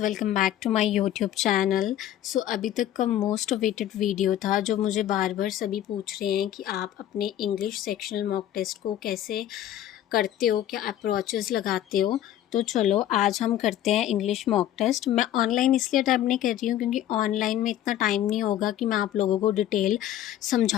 back to my YouTube channel. So अभी तक का most awaited video था जो मुझे बार बार सभी पूछ रहे हैं कि आप अपने इंग्लिश सेक्शनल मॉक टेस्ट को कैसे करते हो, क्या अप्रोचेस लगाते हो। तो चलो आज हम करते हैं इंग्लिश मॉक टेस्ट। मैं ऑनलाइन इसलिए अटैम्प्ट नहीं कर रही हूँ क्योंकि ऑनलाइन में इतना टाइम नहीं होगा कि मैं आप लोगों को डिटेल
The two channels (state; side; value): quieter; right; 12.0 dB